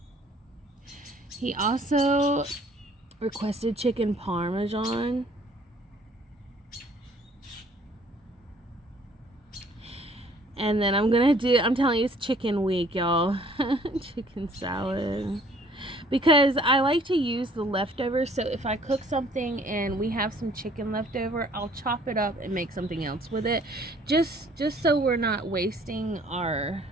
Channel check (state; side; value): normal; both; correlation 0.57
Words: He also requested chicken parmesan. And then I'm telling you, it's chicken week, y'all. Chicken salad. Because I like to use the leftovers, so if I cook something and we have some chicken left over, I'll chop it up and make something else with it. Just so we're not wasting our